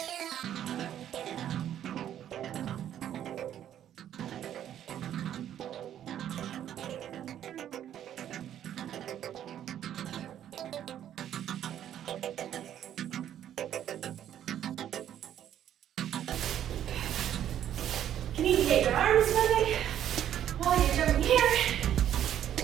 You need to get your arms moving while you're jumping here.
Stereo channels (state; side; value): quieter; left; 10.7 dB